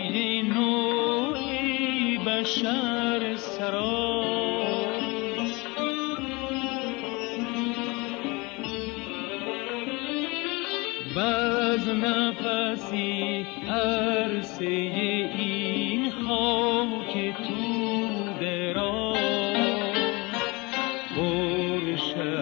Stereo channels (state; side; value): quieter; right; 25.8 dB